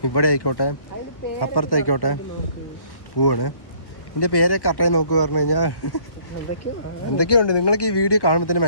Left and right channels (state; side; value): late; right; 1.1 ms